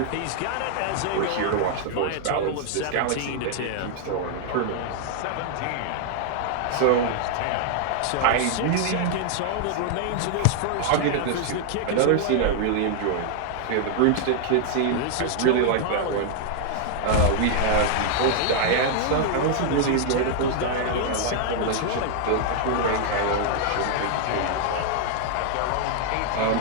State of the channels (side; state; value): both; different; correlation 0.00